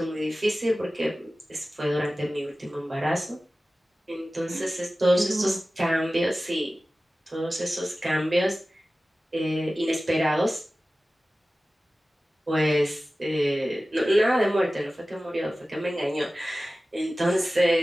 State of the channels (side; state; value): both; normal; correlation 0.96